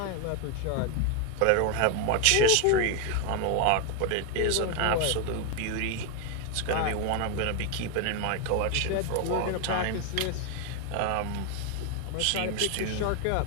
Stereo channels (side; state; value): both; different; correlation 0.01